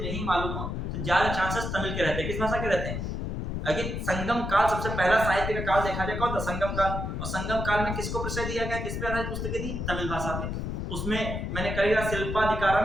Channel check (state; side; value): noise; left; rumble, 3 dB below the sound